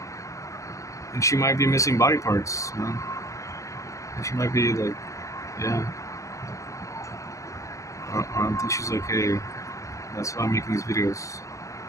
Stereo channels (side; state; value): right; late; 0.15 ms